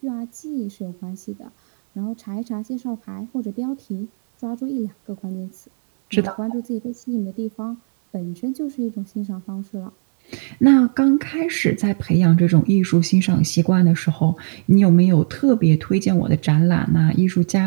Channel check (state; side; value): silent; left; 66 dB below the other